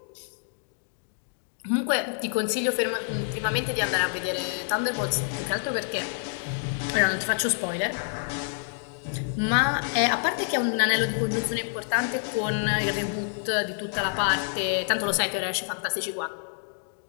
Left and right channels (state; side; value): silent; right; digital silence